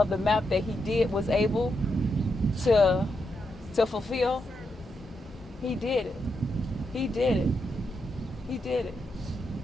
the map that he did was able to fulfill, he did it. He did it. He did it.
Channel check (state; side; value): normal; both; correlation 0.83